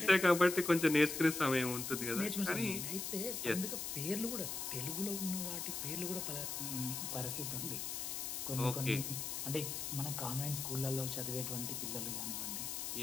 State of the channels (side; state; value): left; noise; hiss, 4 dB below the sound